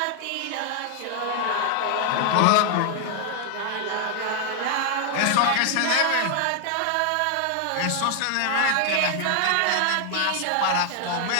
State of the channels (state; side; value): different; both; correlation 0.00